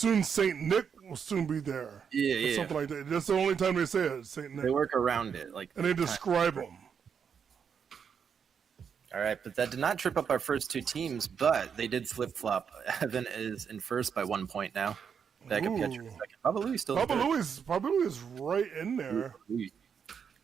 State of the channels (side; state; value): left; quieter; 7.0 dB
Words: Saint Nick will soon be there. Yeah. Or something like that. That's the only time they say it, Saint Nick. They work around it, like, And they describe him. All right, but that did not trip up our first 2 teams, but they did flip flop. Evan is in first by 1 point now. Backup catcher in second. Baba Louie still. Baba Louie is right in there.